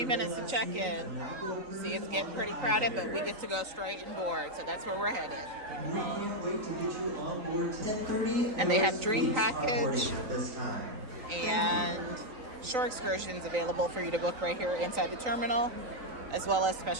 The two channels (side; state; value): left; late; 3.9 ms